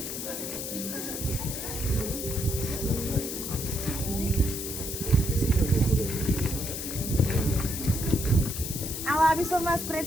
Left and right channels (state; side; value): noise; left; hiss, 5 dB below the sound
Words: Aby som vás